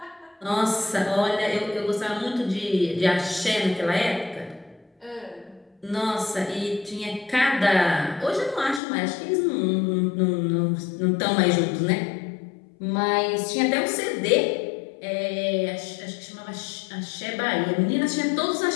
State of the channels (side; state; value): right; drops out; at 8.8 s